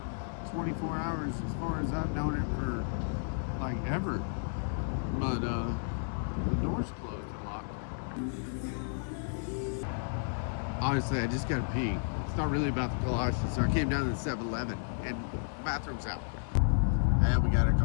24 hours as far as I've known it for like ever. But the door's closed and locked. Honestly, I just gotta pee. It's not really about the galoshes, so I came down to the 7-Eleven and the bathroom's out. And we got our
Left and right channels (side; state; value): right; silent; digital silence